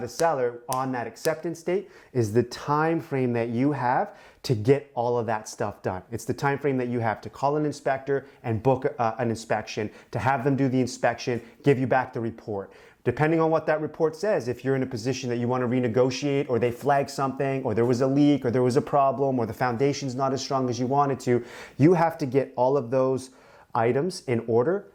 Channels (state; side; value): identical; both; correlation 1.00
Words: seller on that acceptance date, is the time frame that you have to get all of that stuff done. It's the time frame that you have to call an inspector and book an inspection, to have them do the inspection, give you back the report. Depending on what that report says, if you're in a position that you want to renegotiate, or they flag something, or there was a leak, or there was a problem, or the foundation's not as strong as you wanted to, you have to get all of those items in order